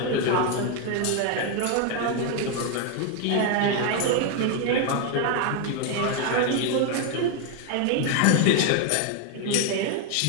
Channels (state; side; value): different; both; correlation 0.01